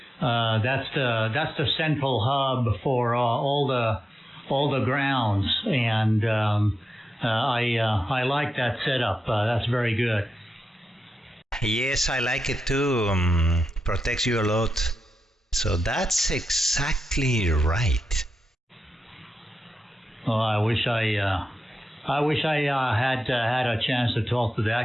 that's the central hub for all the grounds, and I like that setup. That's very good. Yes, I like it too. Protects you a lot. So that's exactly right. Oh, I wish I had a chance to talk to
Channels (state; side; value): normal; both; correlation 0.89